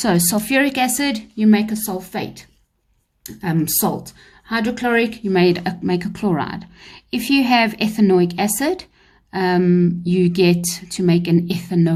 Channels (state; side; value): identical; both; correlation 1.00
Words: sulfuric acid, you make a sulfate, salt. Hydrochloric, you make a chloride. If you have ethanoic acid, you get to make an